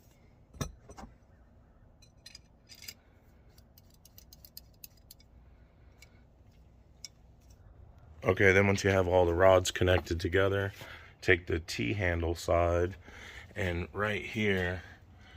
Okay, then once you have all the rods connected together, take the T-handle side, and right here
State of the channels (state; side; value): identical; both; correlation 1.00